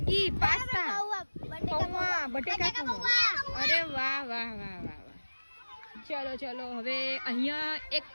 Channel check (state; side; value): inverted; both; correlation -1.00